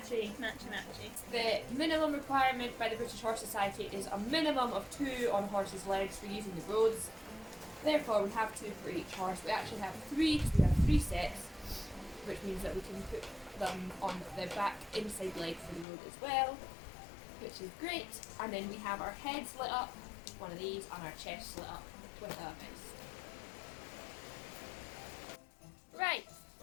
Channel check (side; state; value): right; drops out; at 15.9 s